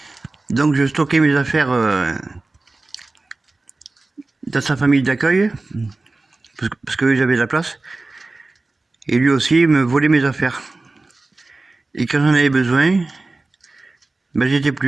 Donc je stockais mes affaires dans sa famille d'accueil parce que j'avais de la place. Et lui aussi me volait mes affaires. Et quand j'en avais besoin, ben j'étais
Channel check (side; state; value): left; quieter; 3.3 dB